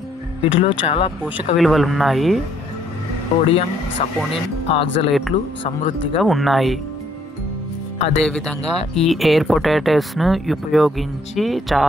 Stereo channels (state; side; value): normal; both; correlation 0.67